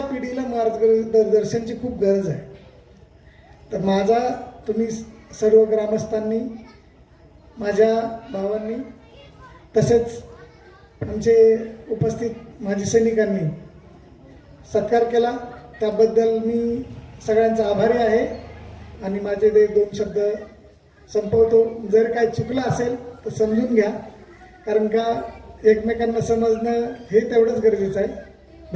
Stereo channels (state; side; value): identical; both; correlation 1.00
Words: पिढीला मार्गदर्शनची खूप गरज आहे. तर तुम्ही सर्व ग्रामस्थांनी, माझ्या भावांनी, तसेच आमचे उपस्थित माजी सैनिकांनी सत्कार केला, त्याबद्दल मी सगळ्यांचा आभारी आहे. आणि माझे ते 2 शब्द संपवतो. जर काही चुकलं असेल तर समजून घ्या, कारण का एकमेकांना समजणं हे तेवढंच गरजेचं आहे.